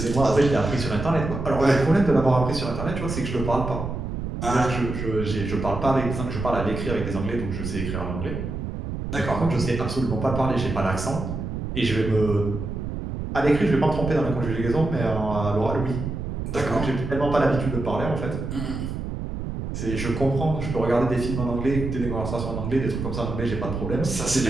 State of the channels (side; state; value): right; noise; rumble, 5 dB below the sound